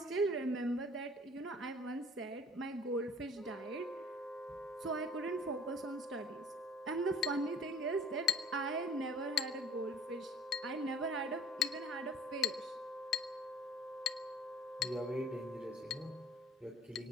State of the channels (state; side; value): normal; both; correlation 0.49